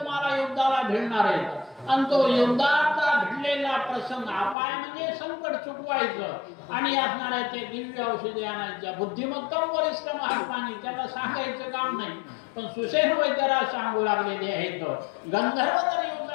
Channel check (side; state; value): right; drops out; at 4.5 s